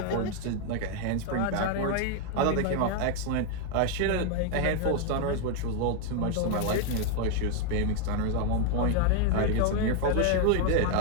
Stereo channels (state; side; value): different; both; correlation 0.01